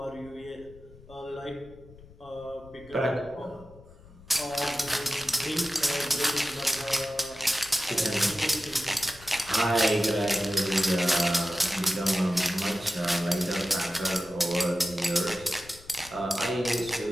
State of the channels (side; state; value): left; noise; rumble, 21 dB below the sound